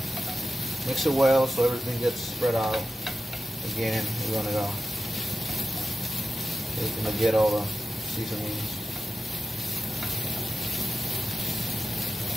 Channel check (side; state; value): both; normal; correlation 0.91